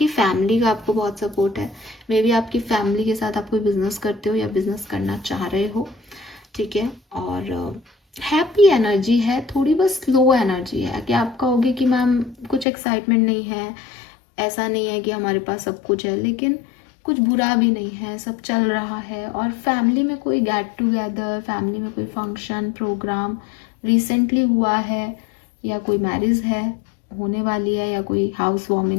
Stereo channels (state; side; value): drops out; right; at 12.7 s